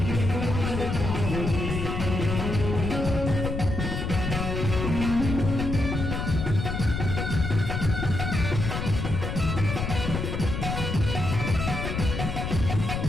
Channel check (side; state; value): left; noise; rumble, 3 dB below the sound